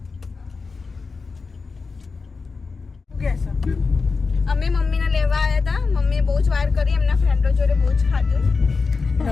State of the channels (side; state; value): right; quieter; 4.5 dB